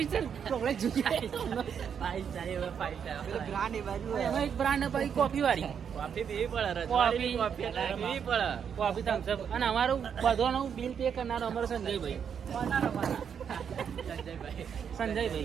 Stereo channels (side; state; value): left; quieter; 7.6 dB